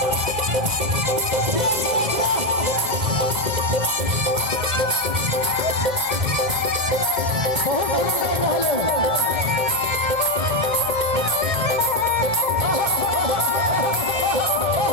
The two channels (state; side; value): late; left; 2.1 ms